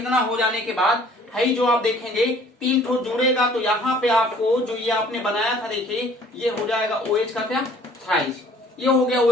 हो जाने के बाद है जो आप देखेंगे 3 ठो जुड़ेगा तो यहाँ पे आपको जो ये आपने बनाया था देखिए ये हो जाएगा OH का क्या, थ्राइस, ये हो गया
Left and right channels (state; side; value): normal; both; correlation 0.55